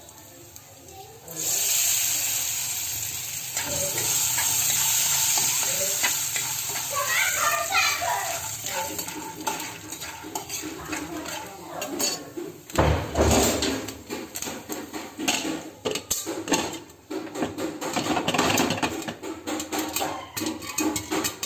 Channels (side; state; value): both; identical; correlation 1.00